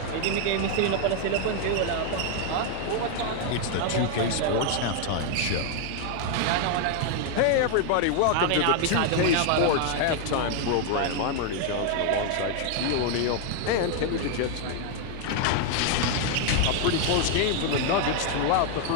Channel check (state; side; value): different; both; correlation 0.00